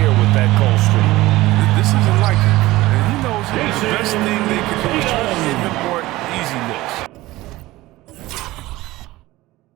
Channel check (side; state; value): left; quieter; 18.2 dB